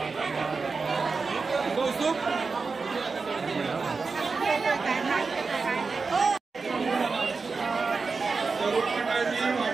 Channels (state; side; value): quieter; left; 4.5 dB